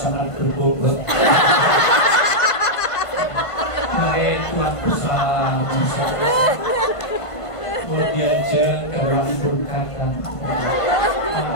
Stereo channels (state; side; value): late; right; 1.5 ms